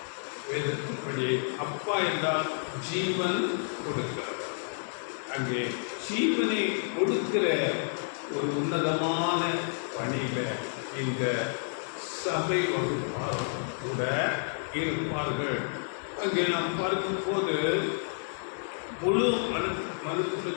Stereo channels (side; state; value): right; silent; digital silence